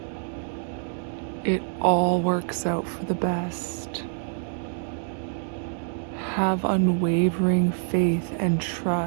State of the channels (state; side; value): silent; left; 61 dB below the other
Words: It all works out for the best. Have unwavering faith and